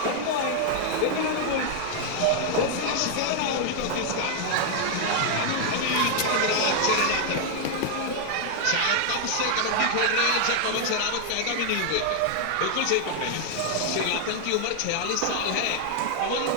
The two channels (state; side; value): different; both; correlation 0.00